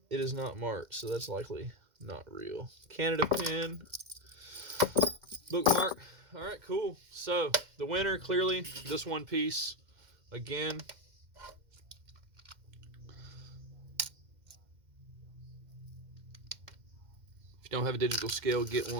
It is not marked, so that's likely not real. Canada pin. Bookmark. All right, cool. So the winner, clearly, this one piece. Again, if you don't have a digital scale, get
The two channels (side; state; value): left; late; 2.1 ms